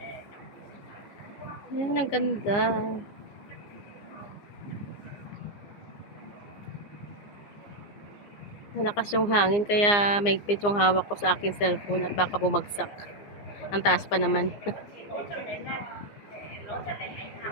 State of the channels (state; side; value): late; right; 15 ms